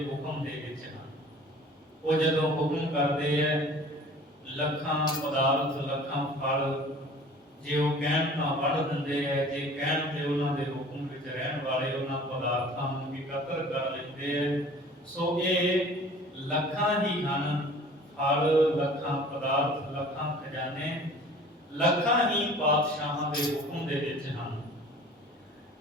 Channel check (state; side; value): normal; both; correlation 0.47